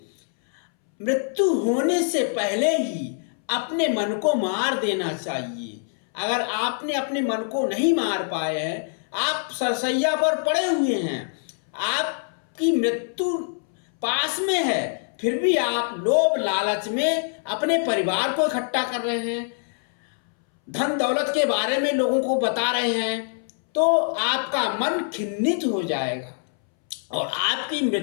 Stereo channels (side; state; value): right; silent; 62 dB below the other